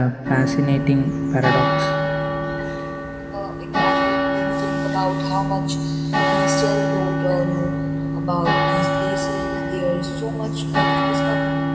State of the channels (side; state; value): both; identical; correlation 1.00